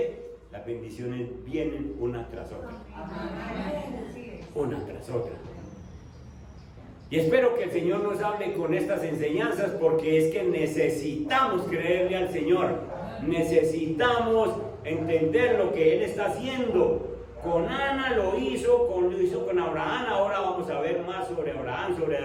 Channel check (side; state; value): both; identical; correlation 1.00